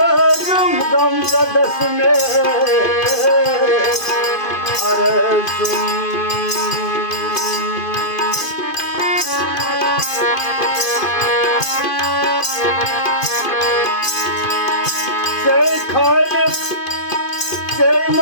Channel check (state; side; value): late; right; 2.5 ms